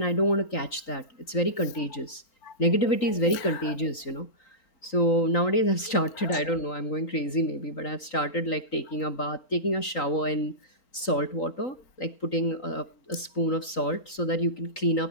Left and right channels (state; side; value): late; right; 3.9 ms